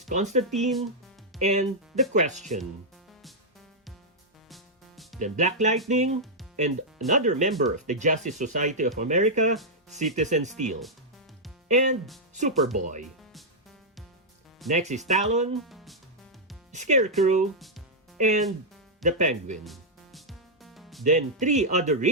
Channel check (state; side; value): normal; both; correlation -0.06